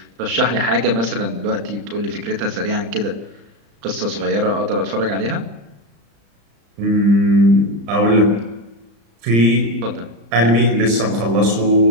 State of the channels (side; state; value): left; late; 35 ms